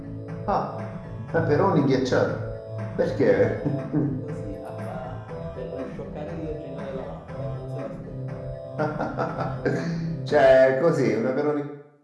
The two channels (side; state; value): both; identical; correlation 1.00